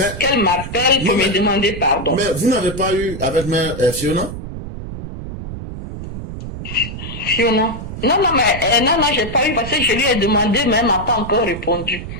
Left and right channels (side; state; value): right; noise; rumble, 9 dB below the sound